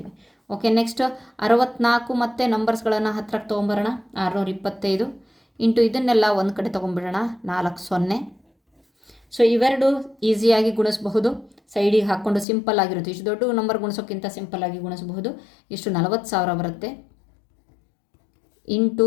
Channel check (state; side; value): drops out; right; at 12.5 s